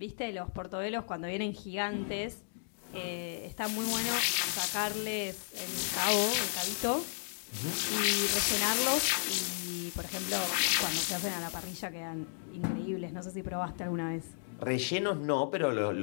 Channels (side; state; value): right; silent; digital silence